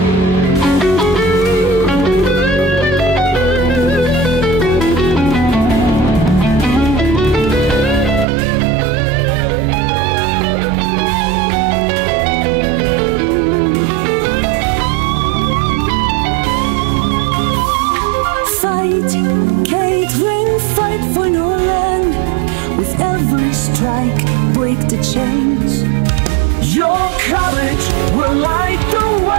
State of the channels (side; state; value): left; drops out; at 8.2 s